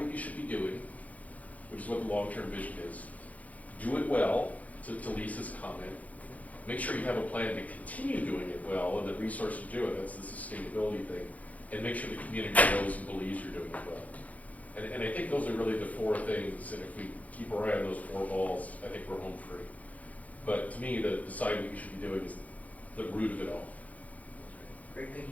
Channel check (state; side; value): late; right; 0.072 ms